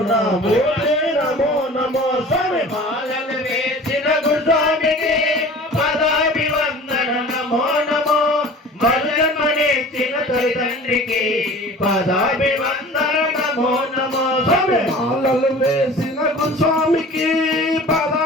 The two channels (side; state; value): both; normal; correlation 0.42